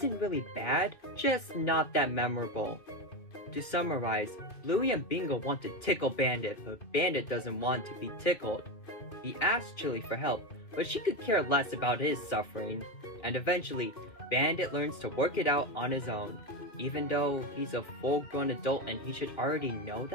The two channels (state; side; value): late; right; 2.8 ms